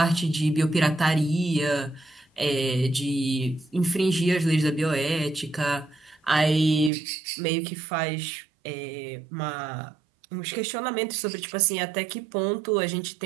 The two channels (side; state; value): left; drops out; at 6.9 s